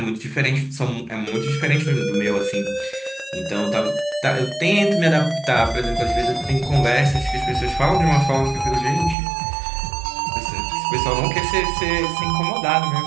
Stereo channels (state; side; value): drops out; left; at 9.2 s